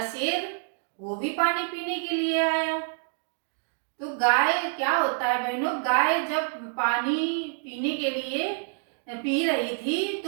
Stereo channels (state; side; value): silent; left; digital silence